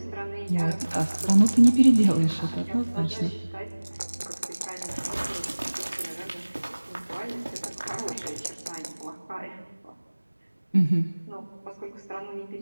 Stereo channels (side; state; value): both; inverted; correlation -1.00